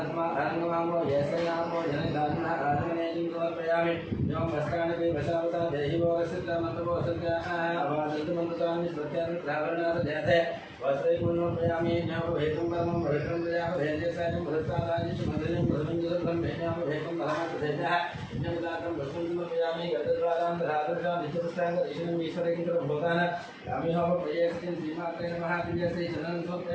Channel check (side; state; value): both; identical; correlation 1.00